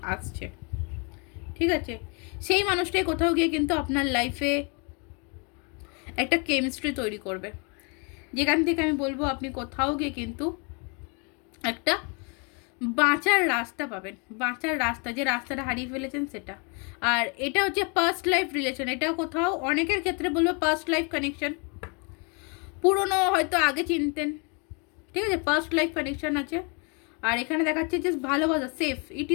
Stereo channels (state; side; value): quieter; right; 34.4 dB